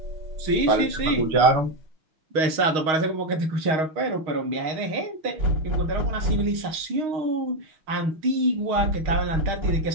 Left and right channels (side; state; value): left; late; 6.4 ms